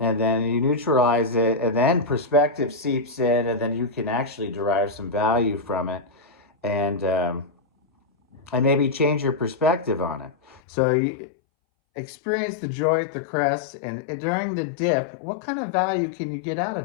then you neutralize it, and then perspective seeps in, and then you can actually derive some value from it, and maybe change your perspective on it. So you experience the joy at the crest, and during the dip, what kind of value can you get out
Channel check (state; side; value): drops out; right; at 10.6 s